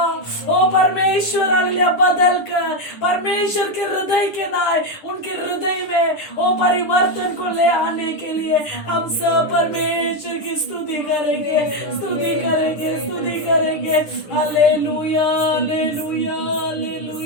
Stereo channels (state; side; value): late; right; 9.9 ms